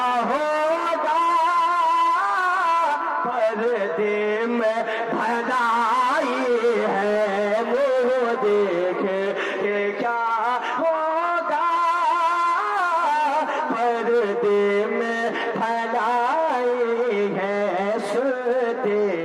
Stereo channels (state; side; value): identical; both; correlation 1.00